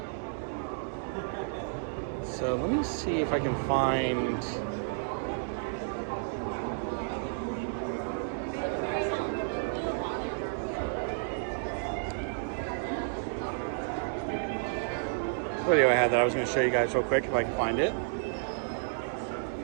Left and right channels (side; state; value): left; silent; digital silence